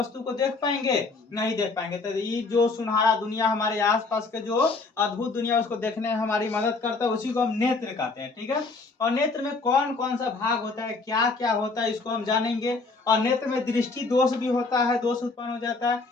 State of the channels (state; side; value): quieter; right; 3.9 dB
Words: को देख पाएंगे, नहीं देख पाएंगे। तो ये जो सुनहरा दुनिया हमारे आसपास के जो अद्भुत दुनिया, उसको देखने में हमारी मदद करता है, उसी को हम नेत्र कहते हैं। ठीक है, और नेत्र में कौन कौन सा भाग होता है, क्या क्या होता है, इसको हम जानेंगे। और नेत्र में दृष्टि दोष भी होता है, दोष उत्पन्न हो जाता